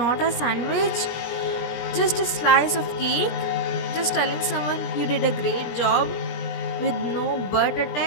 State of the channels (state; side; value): late; right; 17 ms